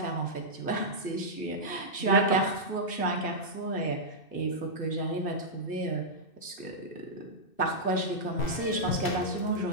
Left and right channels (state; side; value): late; right; 2.6 ms